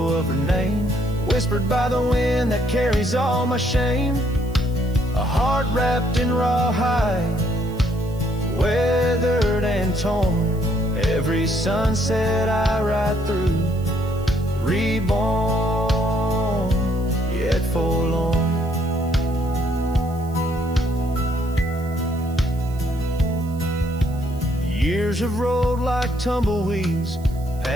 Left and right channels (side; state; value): right; noise; hiss, 24 dB below the sound